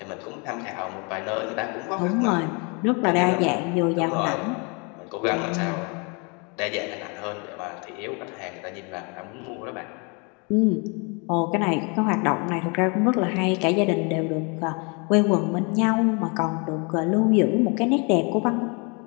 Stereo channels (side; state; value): right; quieter; 32.5 dB